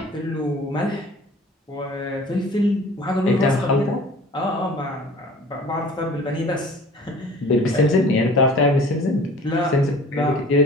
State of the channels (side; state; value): both; normal; correlation 0.46